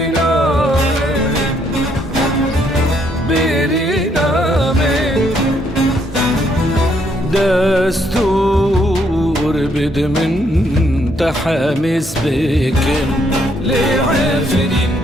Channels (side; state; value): both; normal; correlation 0.71